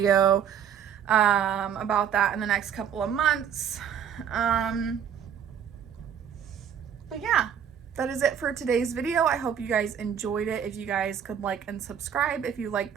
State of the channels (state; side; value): quieter; left; 8.4 dB